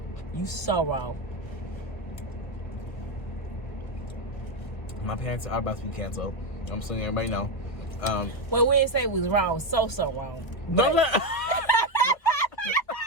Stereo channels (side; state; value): right; late; 1.7 ms